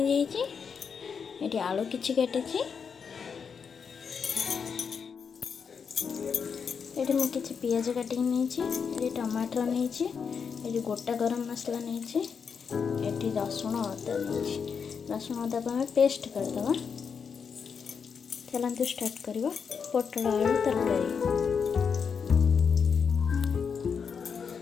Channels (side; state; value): right; quieter; 6.3 dB